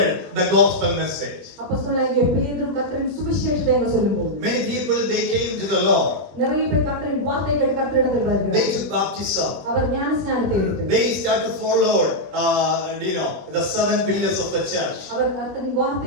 the gospel message. Many people, they came to the Lord. They took baptism. They started to follow the 7 pillars of the church.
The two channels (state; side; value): late; left; 21 ms